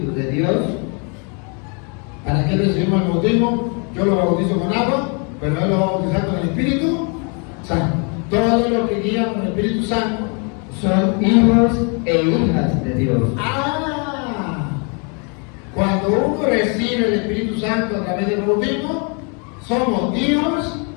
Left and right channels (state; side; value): quieter; right; 36.4 dB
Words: de Dios. ¿Para qué recibimos el bautismo? Yo lo bautizo con agua, pero él lo va a bautizar con el Espíritu Santo. Todos los que guían con el Espíritu Santo son hijos e hijas de Dios. Cuando uno recibe el Espíritu Santo a través del bautismo, somos hijos